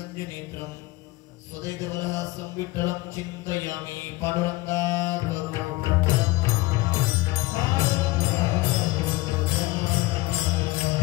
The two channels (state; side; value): quieter; right; 20.5 dB